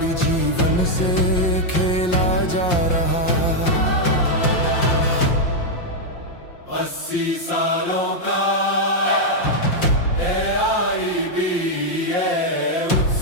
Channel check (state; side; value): late; right; 5.7 ms